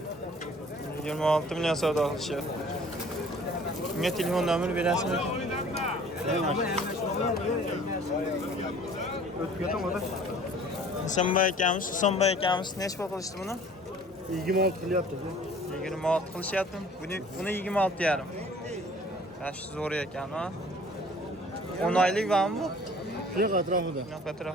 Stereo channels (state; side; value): normal; both; correlation 0.51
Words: 26 million savdo qilishyapti. Unga telefon nomeri berasizmi? Husanboy akamiz nech pul qilishdi buni? 26 qilyapti. 26 qilishyapti. Buni 26,5. Yash zo'r ekan, ha. 10 oylik bormi bu? Yo'q, atrofida. Yo'q,